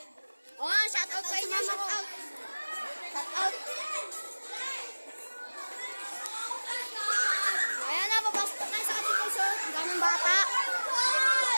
Oh, shout out sa inyo, shout out. Shout out. Ayan na, papasok tayo sa kantin, guys, oh. Ang daming bata.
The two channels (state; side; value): inverted; both; correlation -1.00